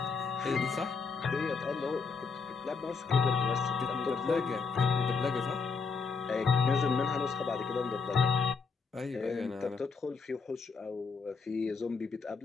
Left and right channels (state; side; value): quieter; right; 5.0 dB